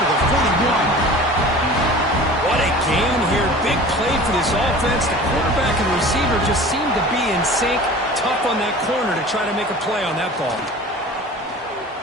to the 41. What a gain here. Big play for this offense. The quarterback and receiver just seem to be in sync. Tough on that corner to try to make a play on that ball.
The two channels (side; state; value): both; normal; correlation 0.41